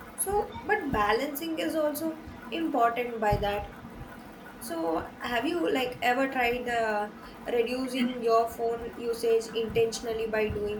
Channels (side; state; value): both; identical; correlation 1.00